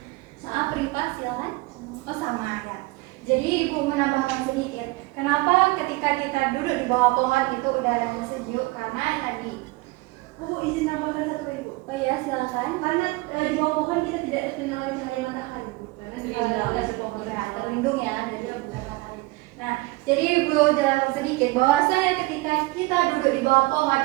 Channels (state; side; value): quieter; left; 22.5 dB